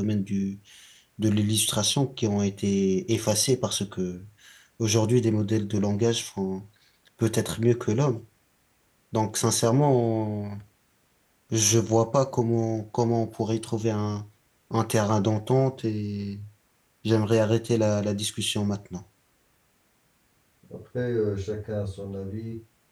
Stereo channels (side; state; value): both; identical; correlation 1.00